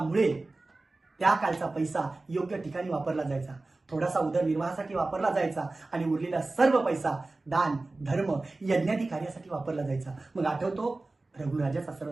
त्या काळचा पैसा योग्य ठिकाणी वापरला जायचा, थोडासा उदरनिर्वाहासाठी वापरला जायचा आणि उरलेला सर्व पैसा दान, धर्म, यज्ञादी कार्यासाठी वापरला जायचा. मग आठवतो रघुराजाचा सर्व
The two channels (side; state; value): left; quieter; 3.2 dB